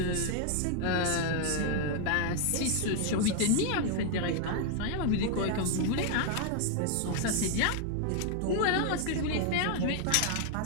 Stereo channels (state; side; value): different; both; correlation 0.00